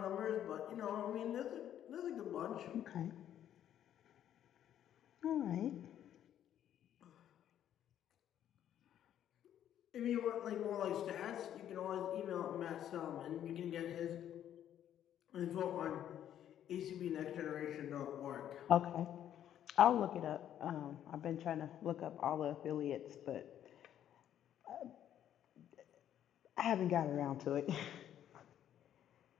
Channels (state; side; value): quieter; right; 10.7 dB